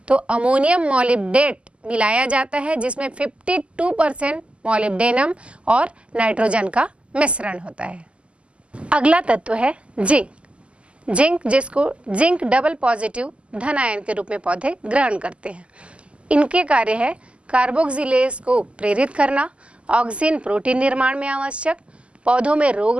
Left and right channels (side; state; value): left; late; 0.055 ms